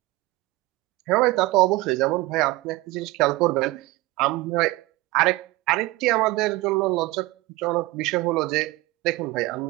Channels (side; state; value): left; quieter; 20.0 dB